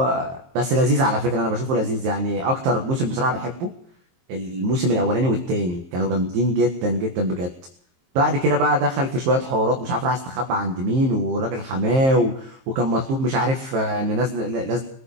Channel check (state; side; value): late; left; 23 ms